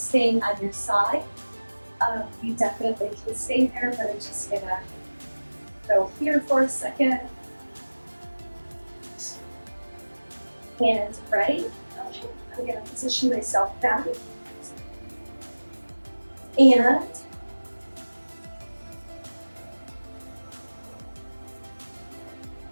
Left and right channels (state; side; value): inverted; both; correlation -1.00